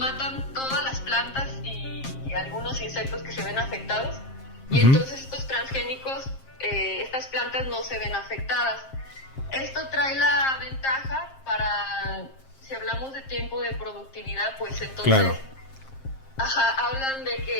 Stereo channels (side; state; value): right; late; 7.5 ms